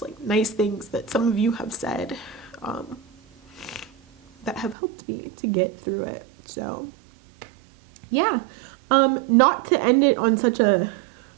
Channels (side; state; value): left; drops out; at 4.8 s